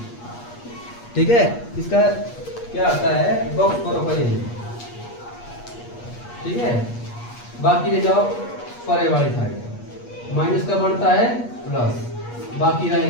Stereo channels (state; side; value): late; right; 8.4 ms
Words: ठीक है, इसका क्या होता है, बॉक्स करो पहले। ठीक है, बाकी ले जाओ परे वाली साइड, माइनस का बनता है प्लस, बाकी